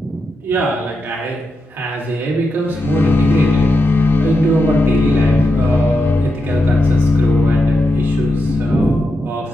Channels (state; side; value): normal; both; correlation 0.87